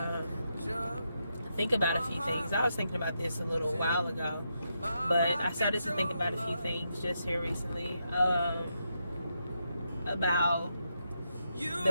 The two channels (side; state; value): both; inverted; correlation -0.83